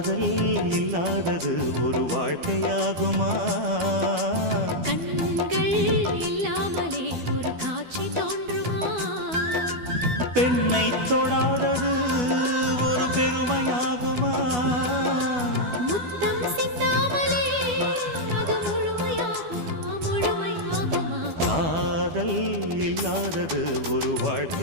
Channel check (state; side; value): late; left; 12 ms